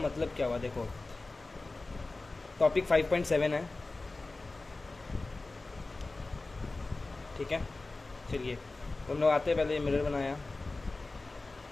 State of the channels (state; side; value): quieter; right; 3.3 dB